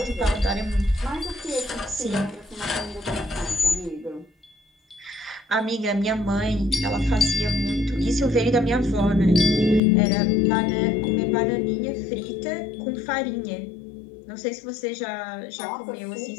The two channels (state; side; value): drops out; right; at 9.8 s